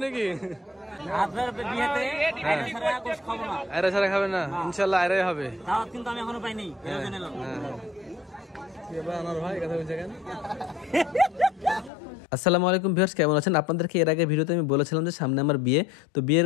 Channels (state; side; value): drops out; right; at 11.9 s